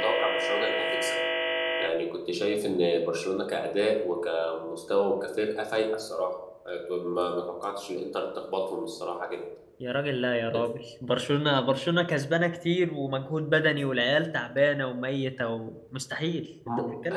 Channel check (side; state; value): both; identical; correlation 1.00